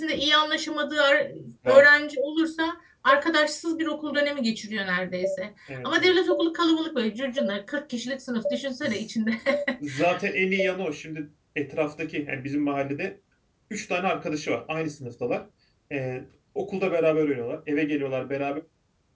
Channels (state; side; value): identical; both; correlation 1.00